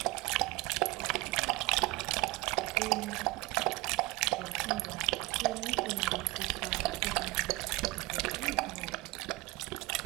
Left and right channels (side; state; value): left; quieter; 22.4 dB